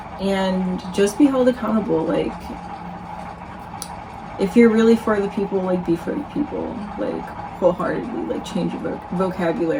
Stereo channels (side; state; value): both; identical; correlation 1.00